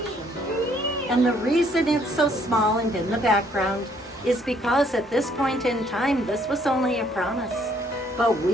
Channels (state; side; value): normal; both; correlation 0.65